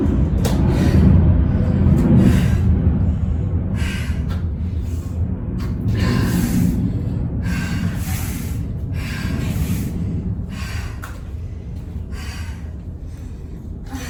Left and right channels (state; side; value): identical; both; correlation 1.00